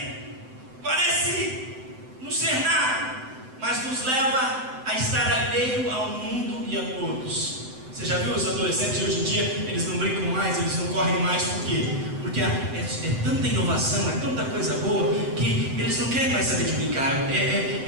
Parece não ser nada, mas nos leva a estar alheio ao mundo e a todos. Você já viu os adolescentes de hoje em dia? Eles não brincam mais, eles não correm mais. Por quê? Porque é tanta inovação, é tanta coisa boa, que eles não querem mais saber de brincar.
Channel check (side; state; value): left; late; 7.8 ms